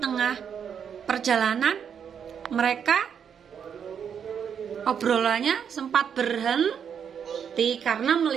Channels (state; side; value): quieter; left; 7.7 dB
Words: perjalanan mereka obrolannya sempat berhenti karena